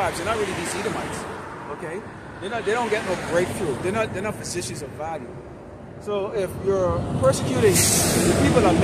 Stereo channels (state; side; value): identical; both; correlation 1.00